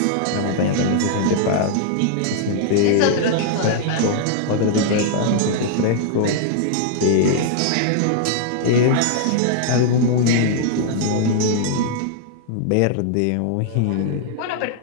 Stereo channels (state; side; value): different; both; correlation -0.01